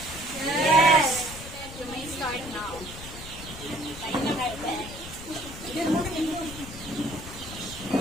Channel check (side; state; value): left; noise; rumble, 13 dB below the sound